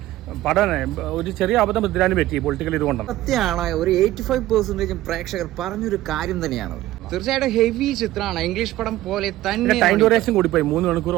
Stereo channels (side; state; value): left; quieter; 15.4 dB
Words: പടം ഒരു ചെറിയ അബദ്ധം പൃഥ്വിരാജിന് പറ്റി പൊളിറ്റിക്കൽ ഇതുകൊണ്ടാണ്. സത്യമാണ്, ഒരു 85% പ്രേക്ഷകർ പറഞ്ഞൊരു കാര്യം തന്നെയാണ്. തീർച്ചയായിട്ടും ഹെവി ചിത്രമാണ്, ഇംഗ്ലീഷ് പടം പോലെ തന്നെ. ടൈം ഡ്യൂറേഷൻ കൂടിപ്പോയി, 3 മണിക്കൂർ